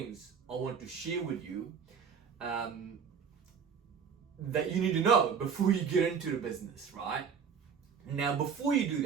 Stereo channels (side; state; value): left; quieter; 6.7 dB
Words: I want to share with you that you need to know before you get into the business, right? Now, before you do